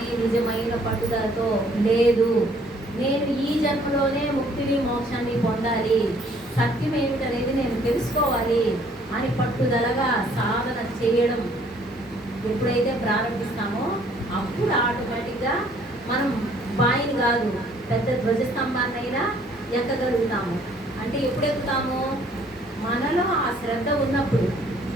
నిజమైన పట్టుదలతో లేదు, నేను ఈ జన్మలోనే ముక్తిని మోక్షాన్ని పొందాలి, సత్యం ఏమిటనేది నేను తెలుసుకోవాలి అని పట్టుదలగా సాధన చేయడం ఎప్పుడైతే ప్రారంభిస్తామో అప్పుడు ఆటోమేటిక్గా మనం బాయిని కాదు పెద్ద ధ్వజస్తంభాన్నైనా ఎక్కగలుగుతాము. అంటే ఎప్పుడు ఎక్కుతాము? మనలో ఆ శ్రద్ధ ఉన్నప్పుడు.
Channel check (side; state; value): both; normal; correlation 0.61